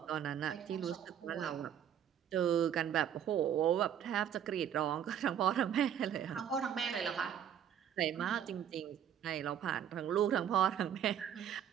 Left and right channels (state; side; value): quieter; left; 9.4 dB